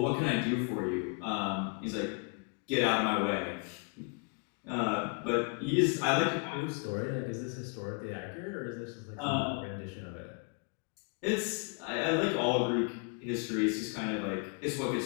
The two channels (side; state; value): right; quieter; 36.6 dB